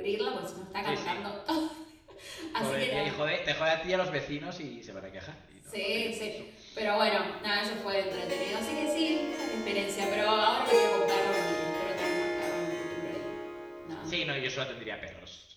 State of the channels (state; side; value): identical; both; correlation 1.00